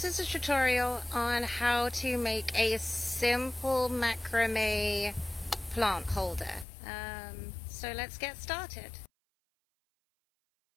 is a tutorial on how to make a simple macrame plant holder. So let's get started.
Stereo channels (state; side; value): drops out; right; at 6.7 s